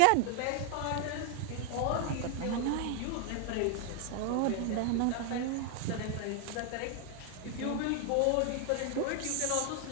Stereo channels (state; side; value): different; both; correlation 0.00